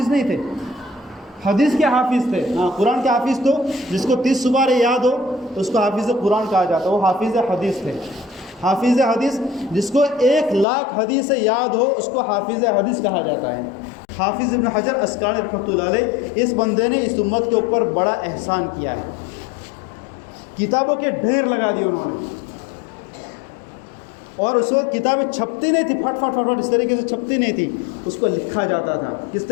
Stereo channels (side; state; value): right; drops out; at 10.7 s